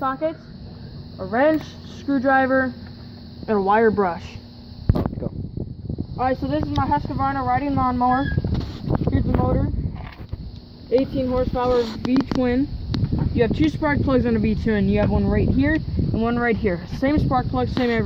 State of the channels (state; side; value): identical; both; correlation 1.00